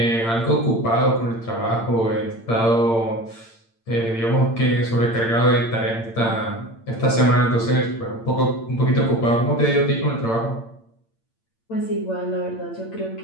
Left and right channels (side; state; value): right; late; 8.8 ms